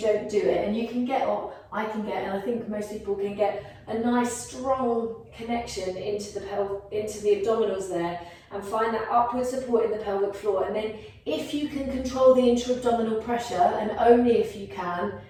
do it. And you can get, or I can get, and I think most people can get a nice strong connection into the abdominals there, and find that upward support in the pelvic floor. And then if you can control the intra-abdominal pressure, and only if you can,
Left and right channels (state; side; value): identical; both; correlation 1.00